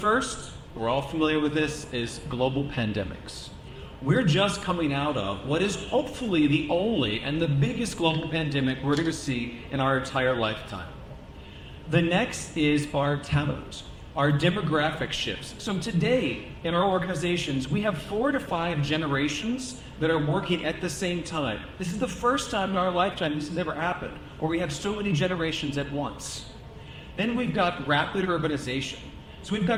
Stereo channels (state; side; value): identical; both; correlation 1.00